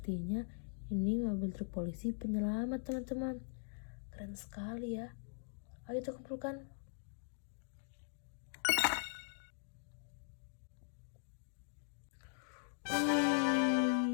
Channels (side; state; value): right; silent; digital silence